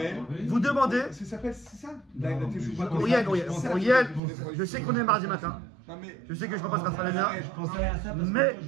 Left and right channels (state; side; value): drops out; left; at 4.2 s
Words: vous demandez, Ça s'appelle, c'est ça la Teshuvah. Auriel, je sais qu'on est mardi matin, Non mais. je sais que je ne peux pas se rattraper bien, Je pensais à ça parce mais